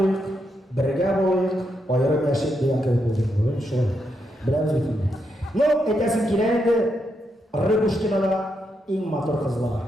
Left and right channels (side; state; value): both; normal; correlation 0.81